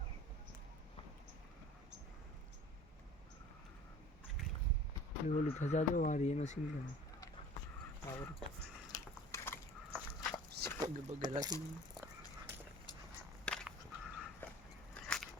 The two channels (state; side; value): normal; both; correlation 0.45